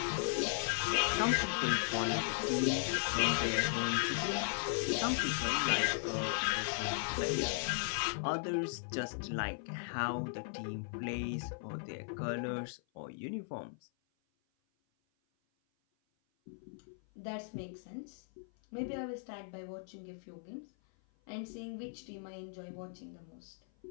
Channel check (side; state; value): right; silent; 53 dB below the other